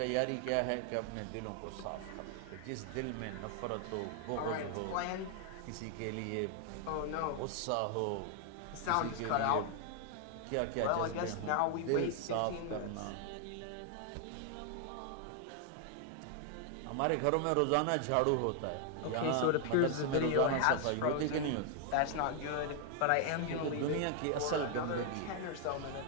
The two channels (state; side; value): different; both; correlation 0.00